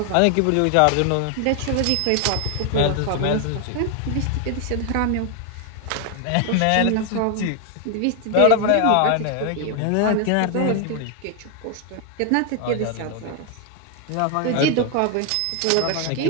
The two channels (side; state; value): both; different; correlation 0.01